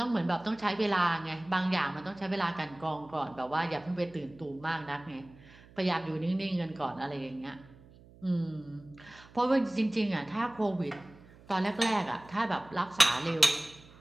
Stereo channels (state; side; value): noise; right; hum, 23 dB below the sound